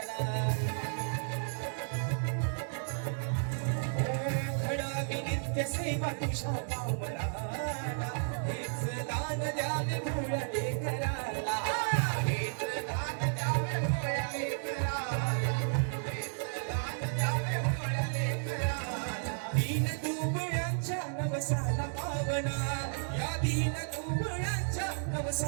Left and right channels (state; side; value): silent; left; digital silence